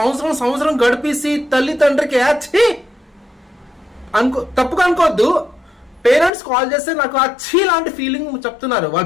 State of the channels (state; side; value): drops out; right; at 6.3 s